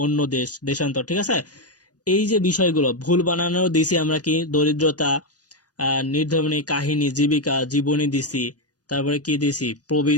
অন্য দেশ, দেশান্তর, ঠিক আছে? এই যে বিষয়গুলো ভুল বানানোর দিছি আমরা কি? দরিদ্রতা, নির্ধর্মী কাহিনী, জীবিকা, জীবনী দিছি, তারপরে কি দিছি,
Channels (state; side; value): late; right; 0.68 ms